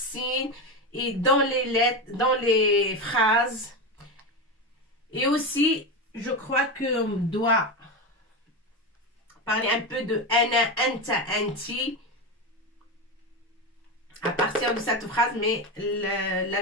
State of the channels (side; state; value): both; normal; correlation 0.17